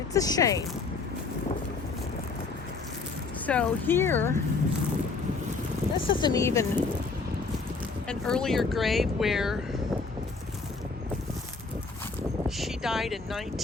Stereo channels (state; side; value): quieter; right; 4.2 dB